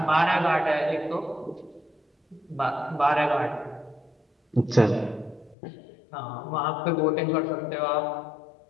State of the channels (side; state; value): right; drops out; at 5.6 s